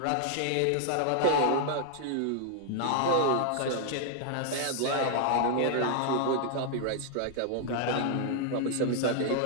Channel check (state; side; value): different; both; correlation 0.00